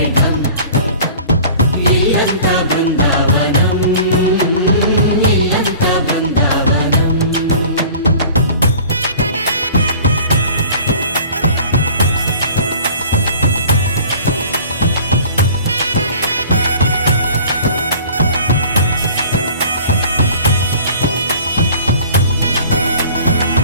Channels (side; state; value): both; inverted; correlation -0.46